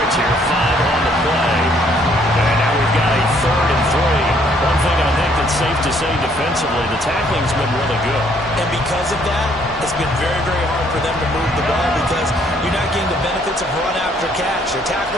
here, 5 on the play. And now we've got a 3rd and 3. One thing I think that's safe to say defensively, the tackling's been really good. And because of that, it's been very, very hard for them to move the ball because you're not getting the benefits of run after catch. They're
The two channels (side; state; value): both; normal; correlation 0.65